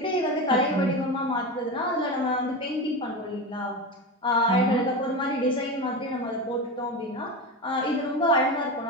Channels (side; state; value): both; normal; correlation 0.22